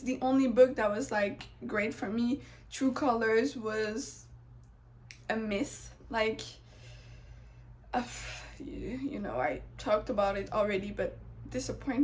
the only book that was like great for me. True Colors was a miss. Like, you know, I talked about it already, but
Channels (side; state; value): both; identical; correlation 1.00